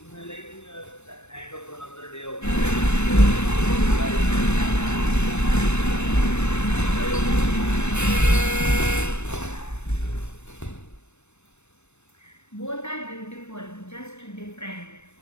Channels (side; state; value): right; late; 0.82 ms